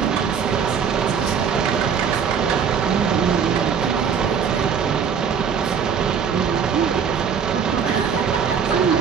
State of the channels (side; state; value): left; quieter; 6.9 dB